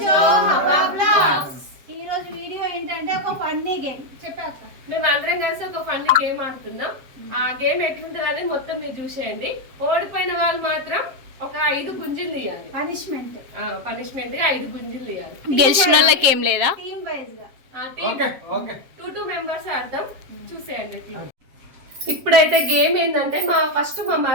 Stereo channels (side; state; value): left; late; 7.5 ms